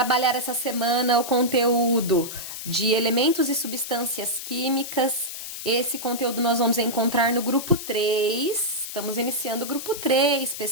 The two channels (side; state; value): left; noise; hiss, 8 dB below the sound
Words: essa semana o conteúdo de elementos e substâncias químicas. Esse conteúdo nós vamos encontrar no grupo 3. Estamos iniciando o grupo 3,